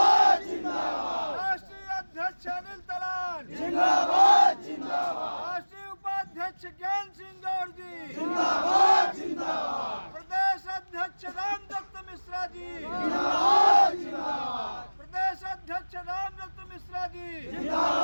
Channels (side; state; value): both; inverted; correlation -1.00